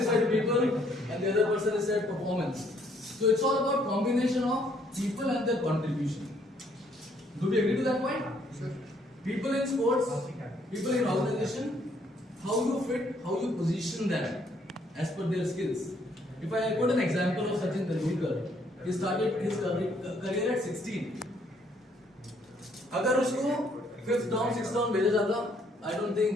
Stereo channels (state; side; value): normal; both; correlation 0.67